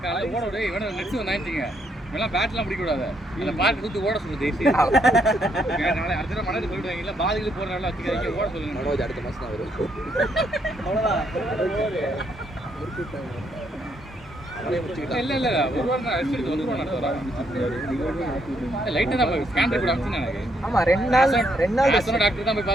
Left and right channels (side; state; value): both; normal; correlation 0.74